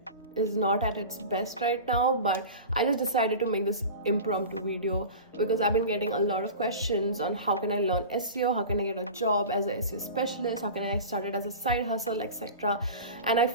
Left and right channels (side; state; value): both; inverted; correlation -0.33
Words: is not at its best right now, but I just decided to make this impromptu video because I've been getting a lot of questions on how can I learn SEO, how can I get a job as a SEO specialist, how can I start it as a side hustle, etc. And I